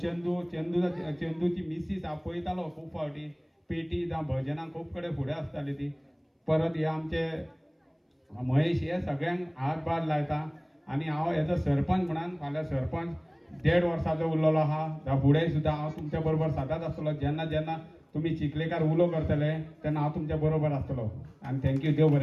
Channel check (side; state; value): both; identical; correlation 1.00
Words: चंदूची मिसीस हांव पळयतालो खूब फावटी पेटी जावं भजनां खूब कडेन फुडें आसताली ती. परत हे आमचे महेश हे सगळ्यांक हातभार लायता. आनी हांव हेजो सरपंच म्हणून फाल्यां सरपंच 1.5 वर्साचो उरलेलो आहा. फुडें सुद्दां हांव तुमच्या बरोबर सदांच आसतलो. जेन्ना जेन्ना तुमी चिखलेकार उलो करतले तेन्ना हांव तुमच्या बरोबर आसतलो. आनी थँक्यू, देव